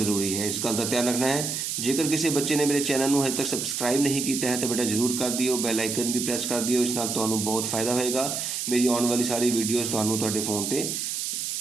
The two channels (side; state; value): right; noise; hiss, 3 dB below the sound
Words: है, इस गल का ध्यान रखना है। जेकर किसी बच्चे ने मेरे चैनल में अजे तक सबसक्राइब नहीं किया है तो बेटा जरूर कर दिओ, बैल आइकन भी प्रेस कर दिओ, इस नाल तुहानूं बहुत फायदा होएगा। मेरी आने वाली सारी वीडियोज़ तुहानूं तुहाडे फोन ते